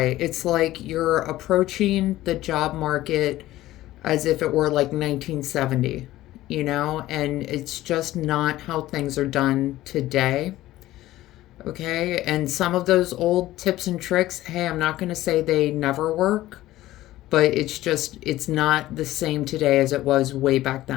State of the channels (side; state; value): right; quieter; 15.6 dB